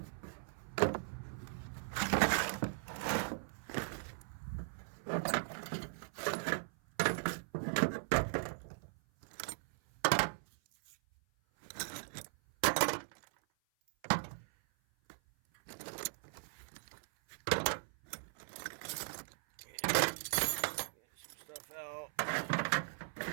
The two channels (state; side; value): silent; left; 52 dB below the other